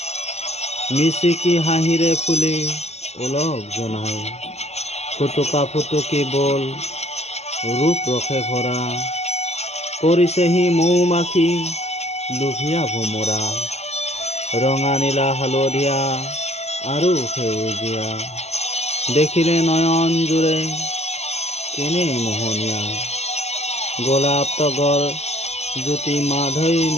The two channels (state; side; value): late; right; 0.31 ms